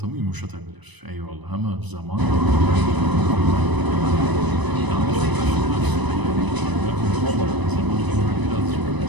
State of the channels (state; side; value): late; left; 1.0 ms